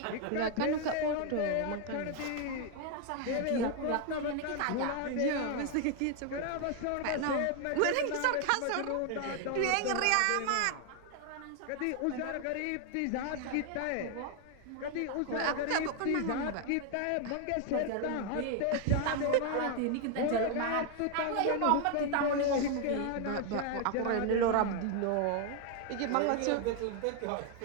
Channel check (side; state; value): both; different; correlation 0.00